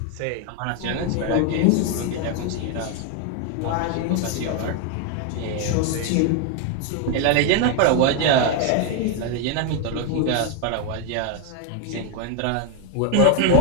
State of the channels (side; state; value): both; different; correlation 0.01